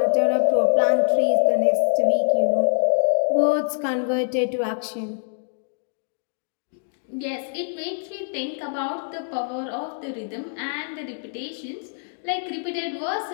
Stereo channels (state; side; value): silent; right; digital silence